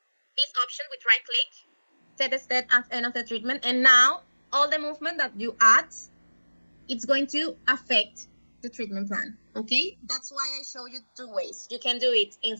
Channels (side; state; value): both; inverted; correlation -1.00